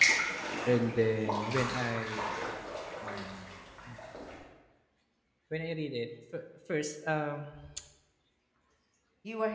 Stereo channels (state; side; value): identical; both; correlation 1.00